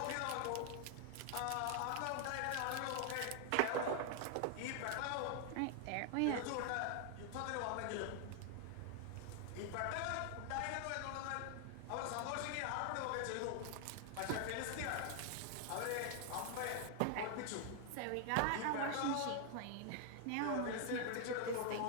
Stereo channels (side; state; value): both; different; correlation 0.00